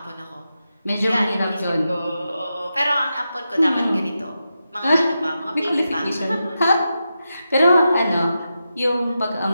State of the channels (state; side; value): inverted; both; correlation -0.89